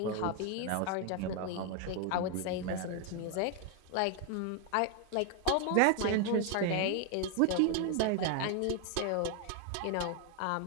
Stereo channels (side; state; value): both; different; correlation 0.01